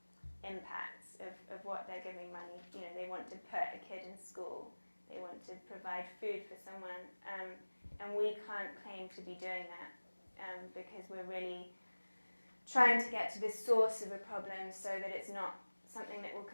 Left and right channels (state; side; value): inverted; both; correlation -1.00